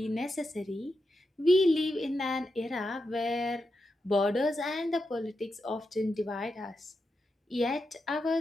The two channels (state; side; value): normal; both; correlation 0.87